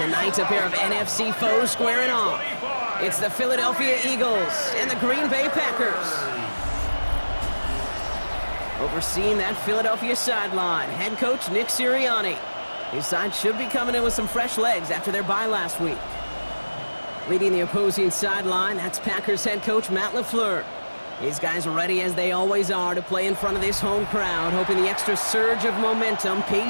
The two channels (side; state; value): both; inverted; correlation -1.00